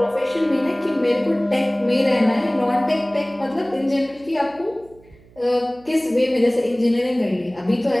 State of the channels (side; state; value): right; noise; hum, 26 dB below the sound